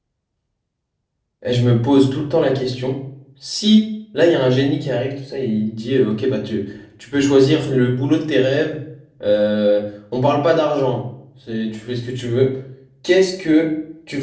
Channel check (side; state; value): both; identical; correlation 1.00